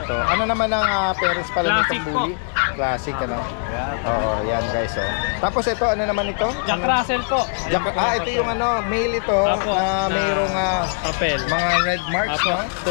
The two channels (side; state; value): right; silent; digital silence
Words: Ano naman ang parents pala Classic nitong po. bully? Classic ano. Oo, yan guys oh. Tapos ito ano naman ito? Jack Russell po. Ayan po, Ito yung ano, male ito Apo, na mayroong papel. mga red marks Apo,